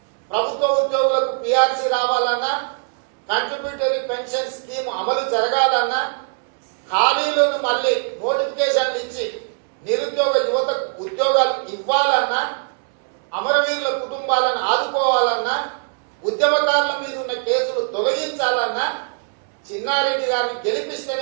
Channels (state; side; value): silent; left; 65 dB below the other